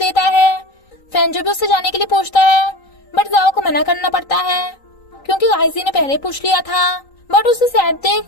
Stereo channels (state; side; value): late; right; 3.9 ms